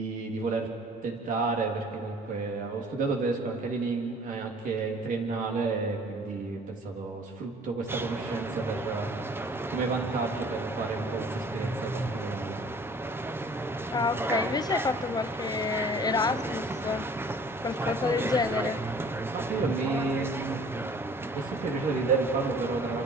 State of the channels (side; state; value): both; normal; correlation 0.51